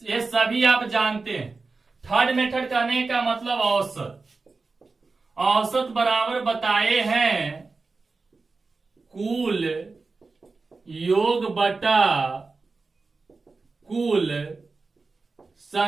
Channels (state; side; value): quieter; left; 4.0 dB